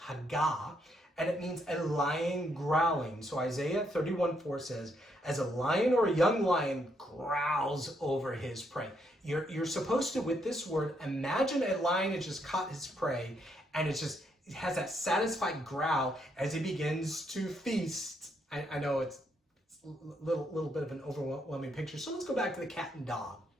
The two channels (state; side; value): normal; both; correlation 0.75